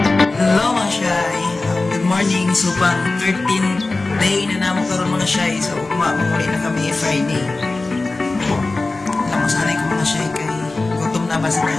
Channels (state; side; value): quieter; right; 3.3 dB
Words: So, pang 13th day na naman karoon mga shy. So, mamuli na kami Friday. Namasanay ko mga shy kay gutom na ba sa